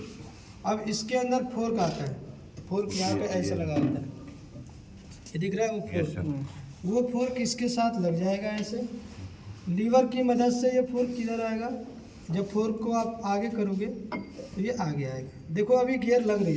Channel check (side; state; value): both; identical; correlation 1.00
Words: अब इसके अंदर फोर्क आता है, फोर्क यहाँ पे ऐसा लगा होता है, ये दिख रहा है वो फोर्क। वो फोर्क इसके साथ लग जाएगा ऐसे, लीवर की मदद से ये फोर्क किधर आएगा, जब फोर्क को आप आगे करोगे तो ये आगे आएगा। देखो अभी गियर लग नहीं